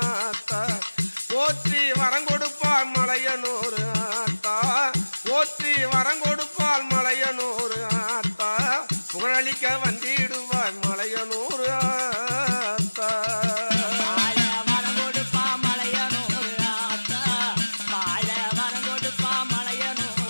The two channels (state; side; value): inverted; both; correlation -1.00